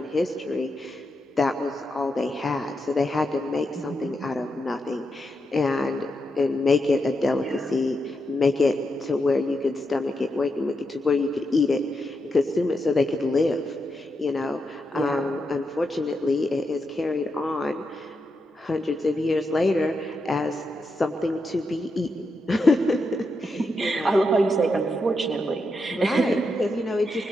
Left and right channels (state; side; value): normal; both; correlation 0.84